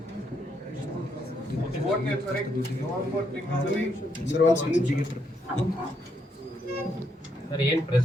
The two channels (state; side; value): normal; both; correlation 0.76